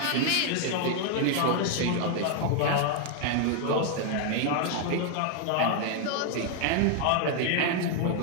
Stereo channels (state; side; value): different; both; correlation 0.00